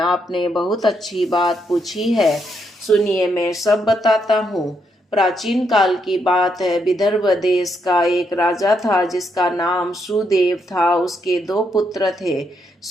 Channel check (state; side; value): normal; both; correlation 0.78